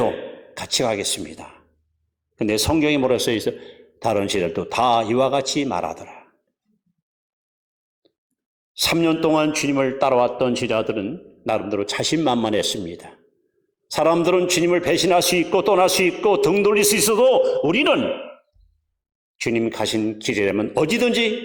같이 가겠습니다. 근데 성경에 뭐라 써 있어? 다른 제자들도 다 이와 같이 말하더라. 3년 동안 주님을 따라왔던 제자들은 나름대로 자신만만했습니다. 사람들은 주님을 배신할 수 있고 떠날 수 있고 등 돌릴 수 있어도 우리는 주님 가신 길이라면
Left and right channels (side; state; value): both; identical; correlation 1.00